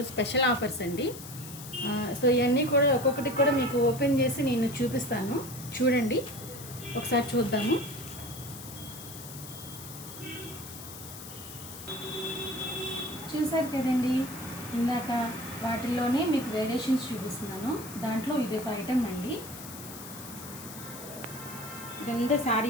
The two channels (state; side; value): noise; left; hiss, 13 dB below the sound